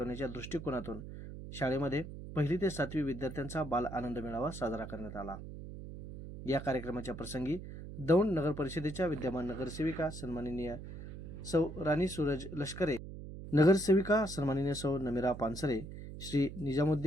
दृष्टिकोनातून शाळेमध्ये 1ली ते 7वी विद्यार्थ्यांचा बाल आनंद मेळावा साजरा करण्यात आला. या कार्यक्रमाच्या प्रसंगी दौंड नगर परिषदेच्या विद्यमान नगरसेविका सन्माननीय सौ राणी सूरज लष्करे, नगरसेविका सन्माननीय सौ नमिरा पानसरे, श्री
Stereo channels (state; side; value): noise; right; hum, 11 dB below the sound